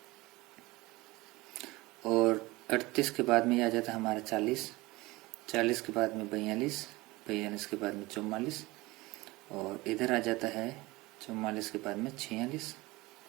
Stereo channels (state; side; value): quieter; left; 21.4 dB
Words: और 38 के बाद में आ जाता है हमारा 40, 40 के बाद में 42, 42 के बाद में 44 और इधर आ जाता है 44 के बाद में 46,